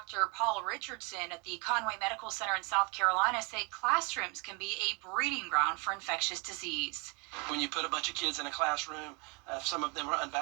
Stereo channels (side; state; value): left; quieter; 30.9 dB